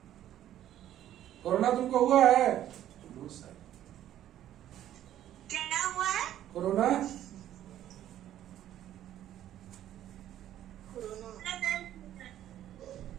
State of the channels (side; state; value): left; quieter; 12.0 dB